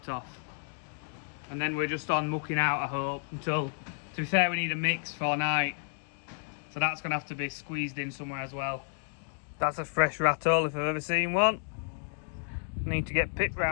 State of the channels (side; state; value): right; silent; 57 dB below the other